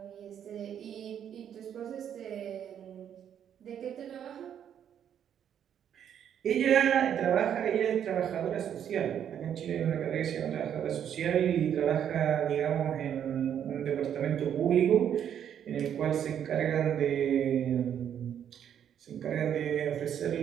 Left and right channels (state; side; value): quieter; left; 9.2 dB